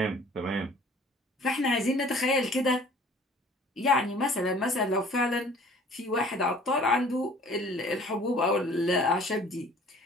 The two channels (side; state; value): both; normal; correlation 0.51